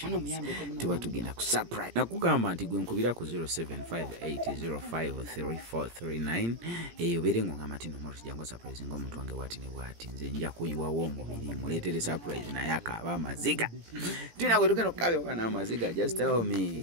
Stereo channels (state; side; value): late; left; 17 ms